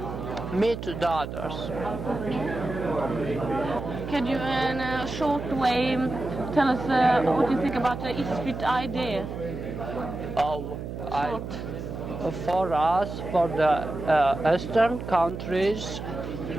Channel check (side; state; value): right; noise; hum, 7 dB below the sound